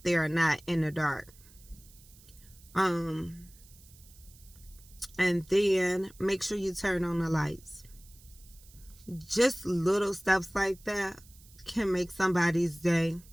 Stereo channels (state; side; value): noise; right; hiss, 24 dB below the sound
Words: there or not in the dark. And then make sure you turn on the lights. Just little steps like that can make somebody's day